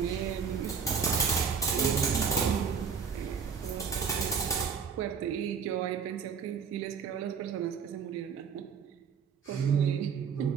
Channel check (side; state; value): left; quieter; 6.4 dB